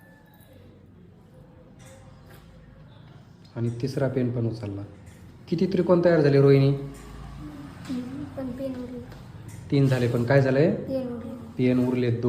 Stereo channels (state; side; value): identical; both; correlation 1.00